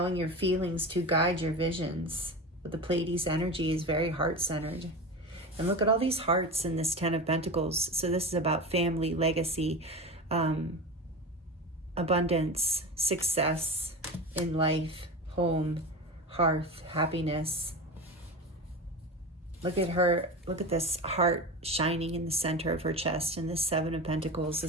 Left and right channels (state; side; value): normal; both; correlation 0.25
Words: your feelings to guide your visions. But the Pleiades energy is very heart-centered. And look at all these hearts in this 10 of Pentacles. So this is about family, legacy, abundance, success in life, home, hearth, happiness. Look at her. Look at this heart shining in the center of her chest. And this 7 of Pentacles.